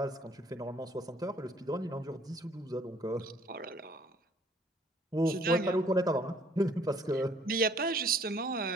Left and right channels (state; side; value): normal; both; correlation 0.59